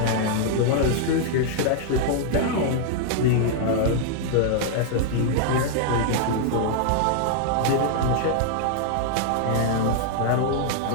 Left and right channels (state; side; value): different; both; correlation -0.01